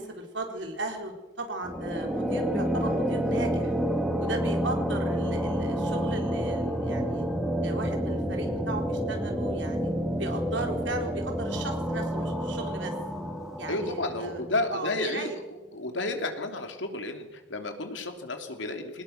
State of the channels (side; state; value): both; normal; correlation 0.54